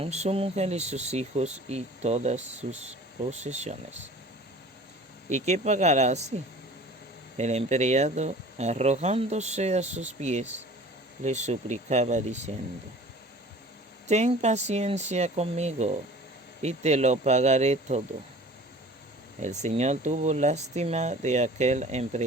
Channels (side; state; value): both; normal; correlation 0.45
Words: su mujer y sus hijos y todas sus posesiones. ¿Y qué pagará así? El empleado, arrojándose a sus pies, le suplicaba diciendo: ten paciencia conmigo y te lo pagaré todo. El Señor tuvo lástima de aquel